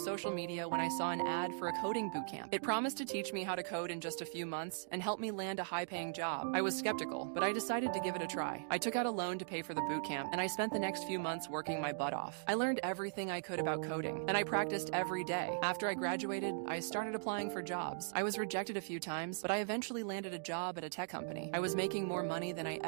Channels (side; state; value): left; silent; digital silence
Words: media when I saw an ad for a coding bootcamp. It promised to teach me how to code in just a few months and help me land a high-paying job. I was skeptical, but I decided to give it a try. I took out a loan to pay for the bootcamp, and I spent the next few months working my butt off. I learned everything I could about coding, and I practiced every day. After I graduated, I started applying for jobs. I was rejected a few times, but I eventually landed a job at a tech company. I was making more money than I